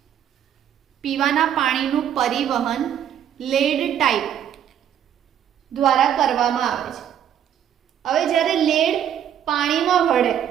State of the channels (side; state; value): left; quieter; 9.7 dB